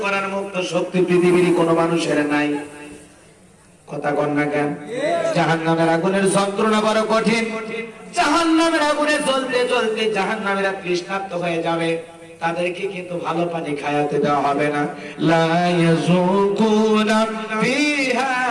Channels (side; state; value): both; identical; correlation 1.00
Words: করার মুক্ত শক্তি পৃথিবীর কোনো মানুষের নাই। কথা কন না কেন? জাহান্নামের আগুনের যন্ত্রণা বড় কঠিন। জাহান্নামের আগুনে জ্বলতে জ্বলতে জাহান্নামীরা তৃষ্ণার্ত হয়ে যাবে, তাদেরকে কিন্তু ভালো পানি খাওয়াতে দেওয়া হবে না। লা ইয়াযুকুনা ফিহা